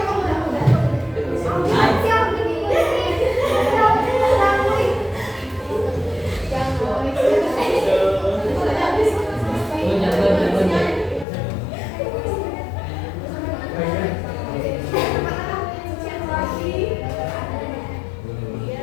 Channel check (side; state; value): right; drops out; at 11.2 s